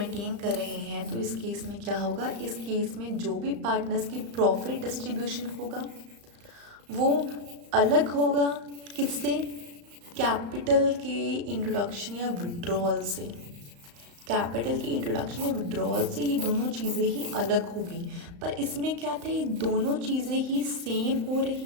कर रहे हैं तो इस केस में क्या होगा, इस केस में जो भी पार्टनर्स की प्रॉफिट डिस्ट्रीब्यूशन होगा वो अलग होगा किससे, कैपिटल के इंट्रोडक्शन या विड्रॉल से। कैपिटल की इंट्रोडक्शन या विड्रॉल से ये दोनों चीज़ें ही अलग होगी। पर इसमें क्या था, ये दोनों चीज़ें ही सेम हो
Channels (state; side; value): late; left; 35 ms